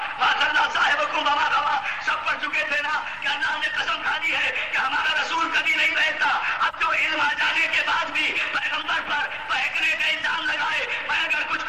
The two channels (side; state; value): both; identical; correlation 1.00